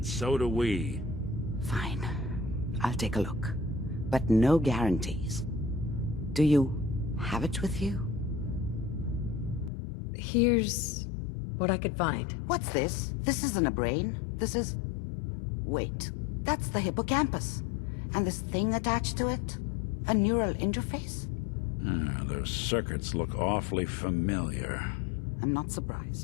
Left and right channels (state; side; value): drops out; right; at 9.7 s